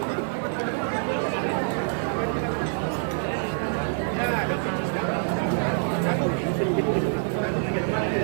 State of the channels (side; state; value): left; silent; 61 dB below the other